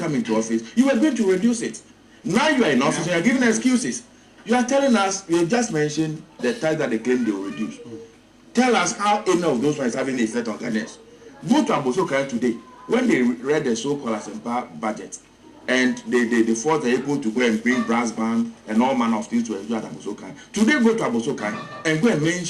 into office, you were going to reduce it. Now you are in office and you are giving excuses. You are telling us, you just mentioned the tax that they claim they will reduce. Tell us how any of those ones having an effect on Ghanaians. Go to Abosokai today. When they read the so-called Asempa budget, and they thought they were able to go and bring brass band and all manner of things to enjoy at Abosokai. Today go to Abosokai and go and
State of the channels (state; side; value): identical; both; correlation 1.00